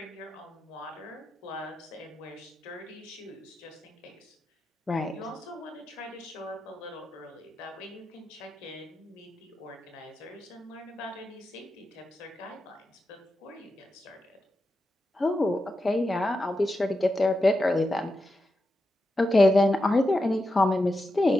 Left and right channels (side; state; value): both; normal; correlation 0.89